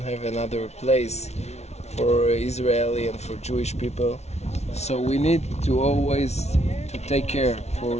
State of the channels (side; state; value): right; late; 0.31 ms